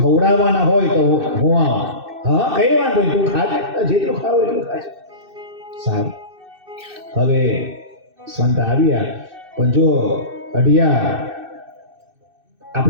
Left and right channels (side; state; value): left; late; 2.6 ms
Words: હોય તો હું આવું. હા કઈ વાંધો નહીં, તું ખાજે, જેટલું ખાવ એટલું ખાજે. સારું. હવે સંત આવ્યા, પણ જો અઢિયા,